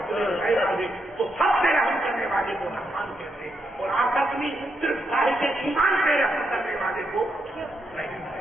غیر آگے تو سب سے رحم کرنے والے کو رحمان کہتے ہیں اور آخرت میں صرف صاحب ایمان پہ رحم کرنے والے کو رحیم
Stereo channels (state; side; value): normal; both; correlation 0.81